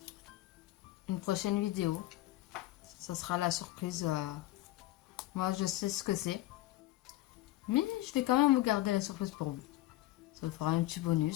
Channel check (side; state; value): right; quieter; 16.5 dB